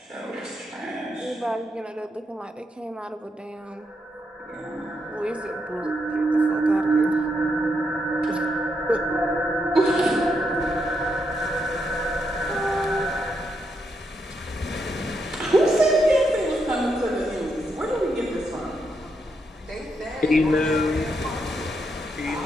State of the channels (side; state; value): both; normal; correlation 0.80